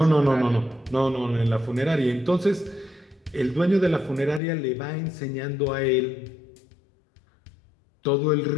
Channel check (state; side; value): drops out; right; at 4.4 s